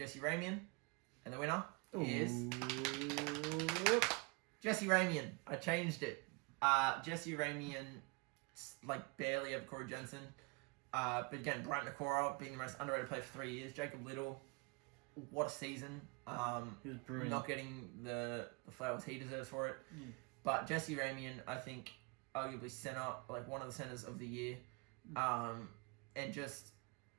Ramian. And the winner is Jesse Ramian. I changed it. Jesse Ramian, like, barely over Corey Jensen. But again, Brighton Nakora being the most underrated player for 3 years. Jacob Little, what a season. He was brilliant. Not getting the flowers he deserves for it. But Jesse Ramian, I think, arguably one of the centers of the year. And just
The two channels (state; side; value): quieter; left; 29.4 dB